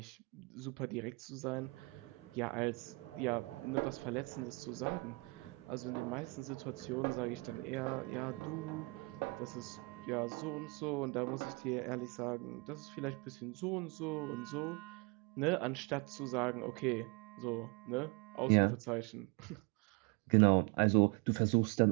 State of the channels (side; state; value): left; quieter; 28.2 dB